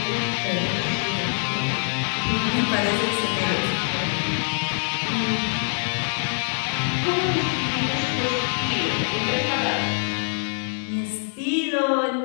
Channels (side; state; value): right; silent; digital silence